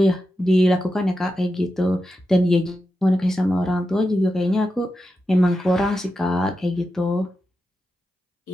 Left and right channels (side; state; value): both; normal; correlation 0.89